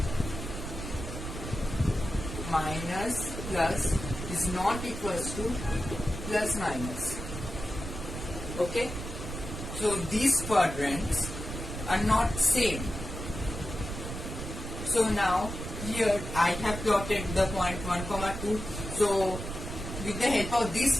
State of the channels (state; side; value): noise; right; rumble, 7 dB below the sound